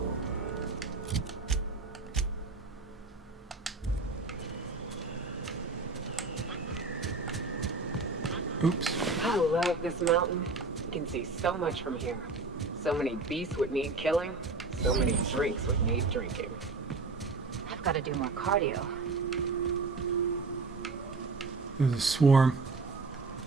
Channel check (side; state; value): left; quieter; 3.7 dB